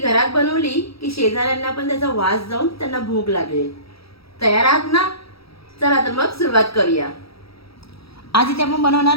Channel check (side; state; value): right; late; 0.76 ms